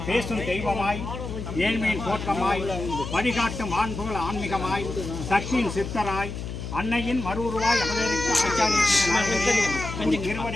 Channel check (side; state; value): left; noise; hum, 7 dB below the sound